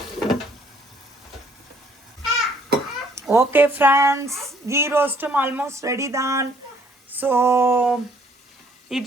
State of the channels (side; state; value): both; normal; correlation 0.63